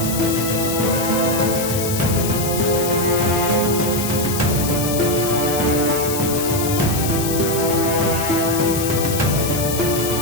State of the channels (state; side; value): noise; left; hiss, 5 dB below the sound